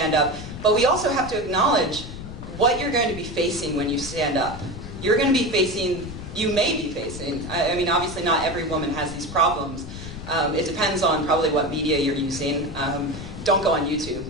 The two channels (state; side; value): noise; left; rumble, 10 dB below the sound